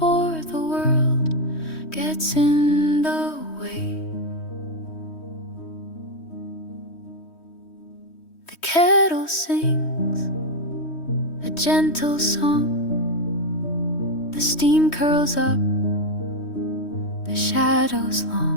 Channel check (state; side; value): late; right; 3.1 ms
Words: the world gets in the way. The kettle sings a gentle song. The steam curls up, the shadows